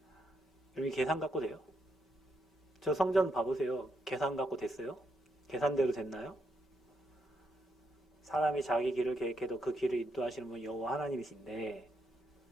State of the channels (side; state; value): both; normal; correlation 0.79